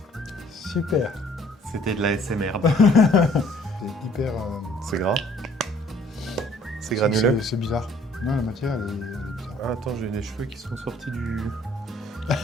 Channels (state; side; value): normal; both; correlation 0.58